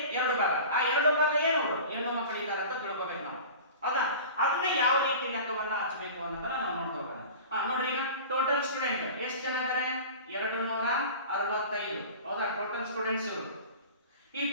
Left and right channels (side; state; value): both; inverted; correlation -0.37